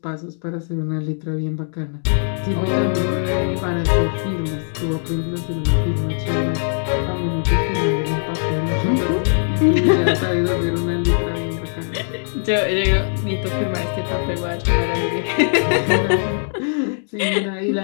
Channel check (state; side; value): silent; right; digital silence